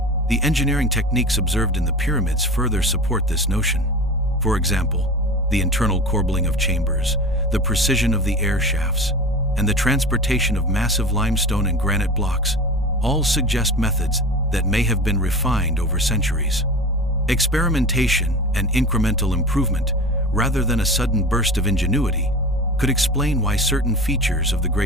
The engineering techniques observed in the pyramids further support this notion. For example, the internal corbelling of chambers, the precision of the air shafts, and the transportation of massive limestone and granite blocks all suggest methods that may have been refined over centuries. Experimentation and incremental improvement, rather than a sudden burst of ingenuity, could explain why certain features of the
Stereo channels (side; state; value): both; normal; correlation 0.32